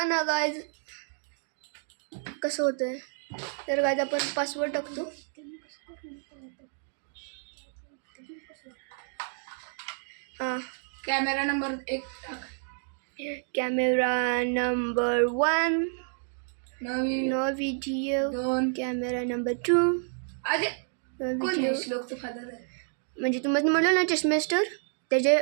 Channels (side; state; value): left; silent; 58 dB below the other